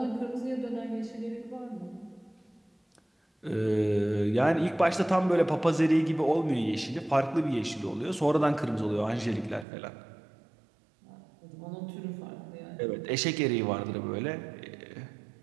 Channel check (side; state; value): left; drops out; at 9.7 s